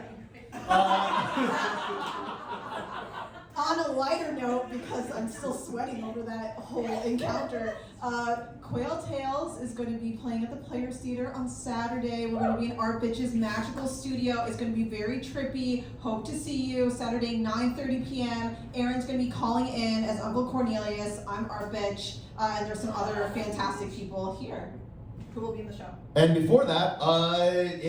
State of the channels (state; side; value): identical; both; correlation 1.00